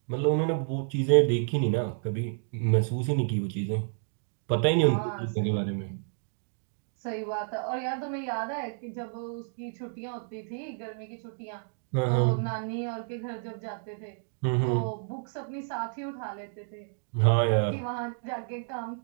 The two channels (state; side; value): silent; left; digital silence